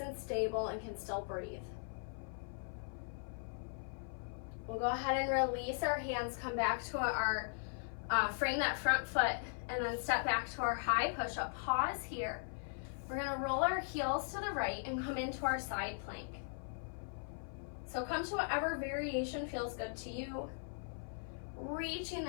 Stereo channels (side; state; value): right; silent; 52 dB below the other